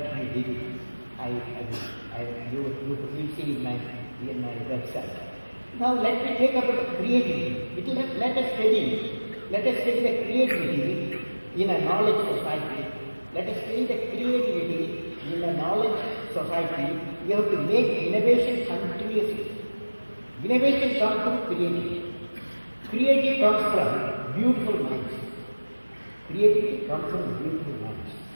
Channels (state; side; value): inverted; both; correlation -1.00